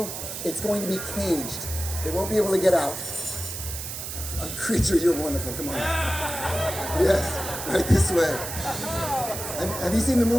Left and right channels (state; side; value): noise; right; hiss, 7 dB below the sound